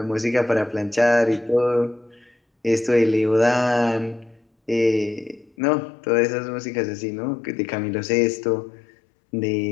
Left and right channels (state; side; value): drops out; right; at 5.5 s